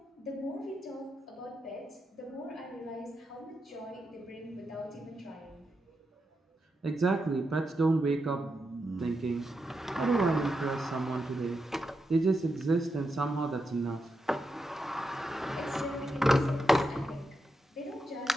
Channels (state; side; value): normal; both; correlation 0.86